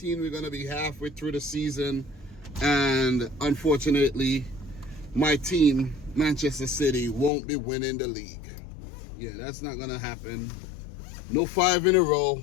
We're going to be halfway through the season and unfortunately my team, Manchester City, won't be winning the league. Yeah, that's not going to happen. No 5 in a row.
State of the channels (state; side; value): drops out; right; at 7.3 s